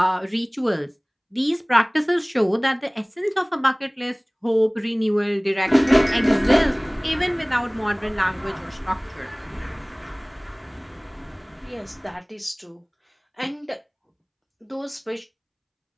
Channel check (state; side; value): identical; both; correlation 1.00